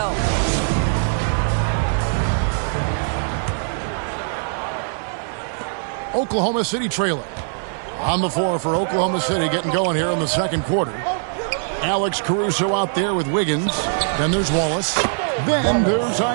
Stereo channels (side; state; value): left; silent; 57 dB below the other